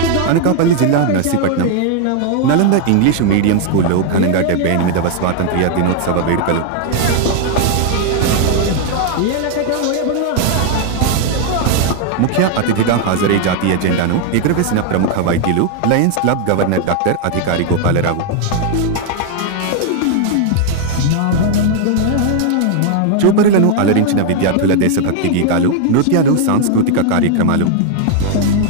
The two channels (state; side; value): different; both; correlation 0.00